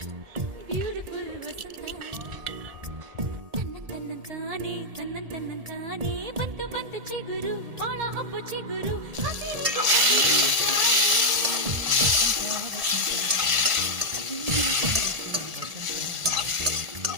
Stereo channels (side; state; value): left; late; 1.7 ms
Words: ಬ್ಯೂಟಿಫುಲ್ ವಸಂತ ತನ್ನಂತಾನೆ ಬಂತು ಬಂತು ಚಿಗುರು ಬಾಳ ಹಬ್ಬ ಚಿಗುರು